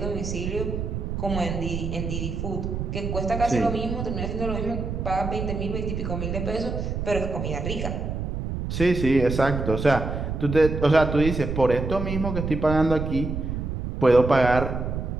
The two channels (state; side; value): noise; right; rumble, 4 dB below the sound